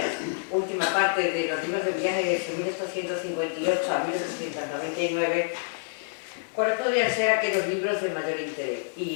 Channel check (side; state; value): right; silent; digital silence